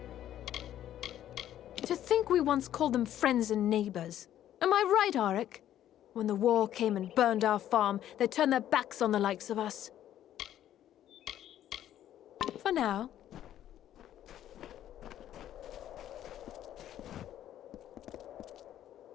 To think we once called them friends and neighbors. Am I right, Auric? When the war came and burned our farm, they turned their backs on the likes of us. For now.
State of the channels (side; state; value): right; quieter; 11.7 dB